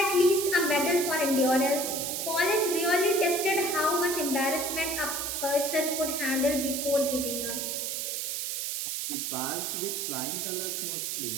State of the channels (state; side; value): noise; right; hiss, 2 dB below the sound